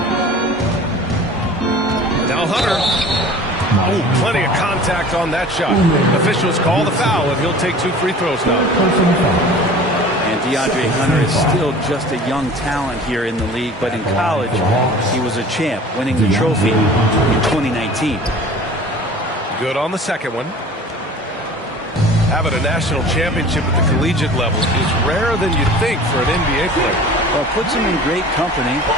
Now Hunter. Oh, plenty of contact on that shot. Officials call the foul, and he'll take 2 free throws now. And DeAndre Hunter is still just a young talent here in the league, but in college, he was a champ, winning the trophy in 2019. Good on the second one. Having a national championship at the collegiate level is rarer than you'd think for an NBA player. Well, it puts him in great company,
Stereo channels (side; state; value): both; normal; correlation 0.43